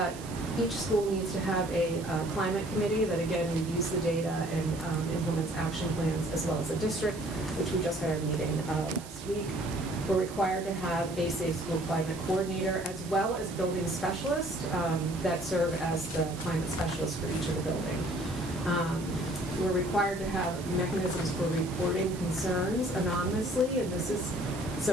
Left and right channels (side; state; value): right; noise; hiss, 16 dB below the sound